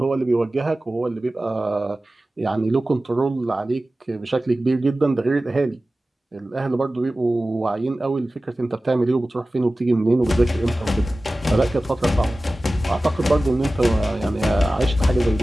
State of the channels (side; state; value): both; normal; correlation 0.96